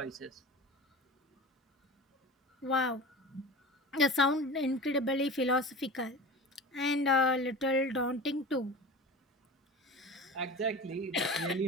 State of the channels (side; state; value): both; normal; correlation 0.33